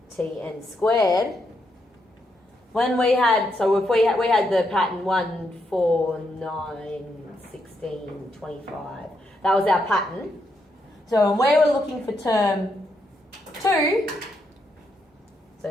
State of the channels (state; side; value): normal; both; correlation 0.79